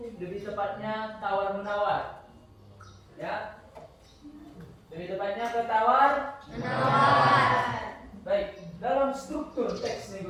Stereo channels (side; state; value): both; identical; correlation 1.00